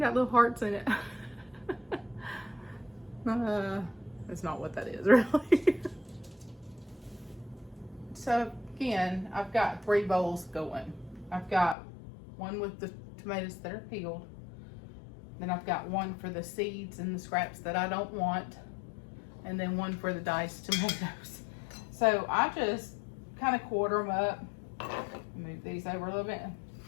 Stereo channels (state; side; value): drops out; right; at 11.8 s